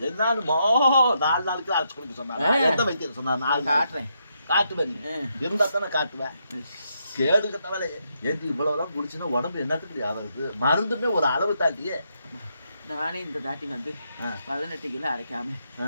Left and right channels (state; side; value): inverted; both; correlation -0.79